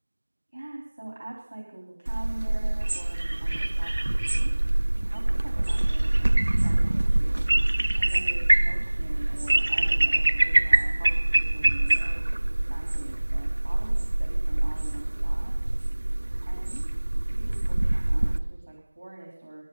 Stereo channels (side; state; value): both; inverted; correlation -1.00